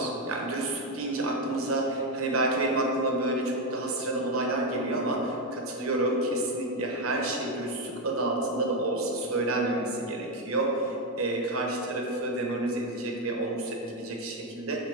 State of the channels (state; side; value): normal; both; correlation 0.07